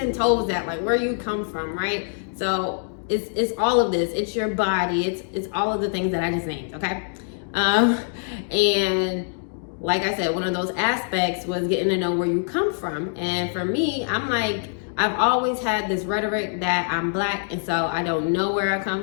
toes at, like where you come from, right? So it's all of this. It's your body. It's all of the things that I just named, okay? And like I said, one of those aspects was getting to know where you come from. And for me, I'm like, I've always had this rhetoric that I'm Black, and so I don't know where I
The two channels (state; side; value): silent; right; digital silence